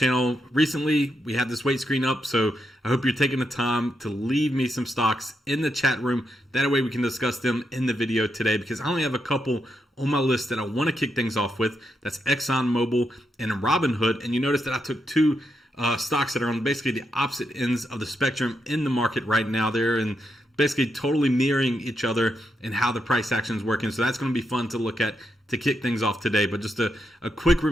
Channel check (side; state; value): both; normal; correlation 0.83